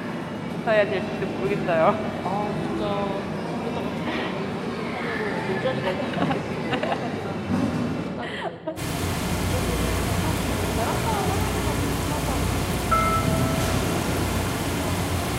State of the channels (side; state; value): both; identical; correlation 1.00